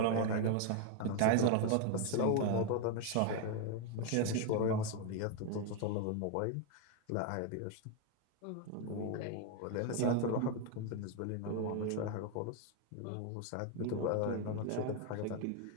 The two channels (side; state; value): both; different; correlation 0.01